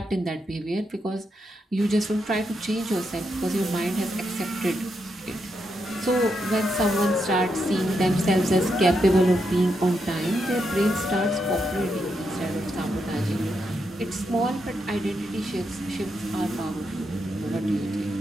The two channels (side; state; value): both; normal; correlation 0.82